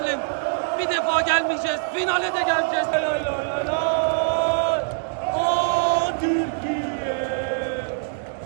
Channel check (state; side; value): silent; left; digital silence